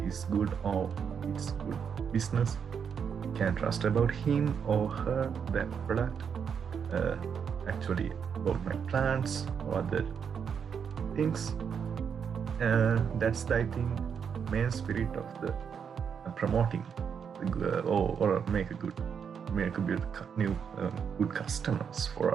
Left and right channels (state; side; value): quieter; left; 7.0 dB